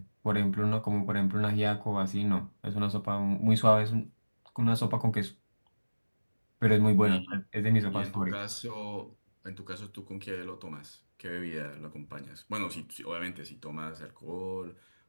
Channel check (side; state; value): both; inverted; correlation -1.00